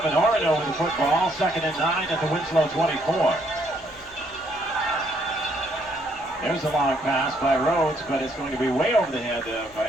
Orono with the football. 2nd and 9 at the Winslow 24. There's a long pass by Rhodes, but it's going to be way over the head of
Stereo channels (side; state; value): left; noise; rumble, 27 dB below the sound